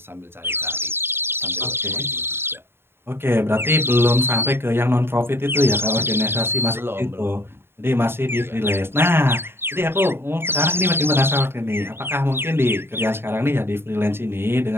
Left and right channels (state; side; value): late; left; 0.11 ms